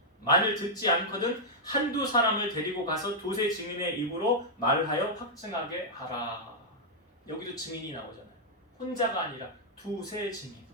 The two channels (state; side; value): normal; both; correlation -0.07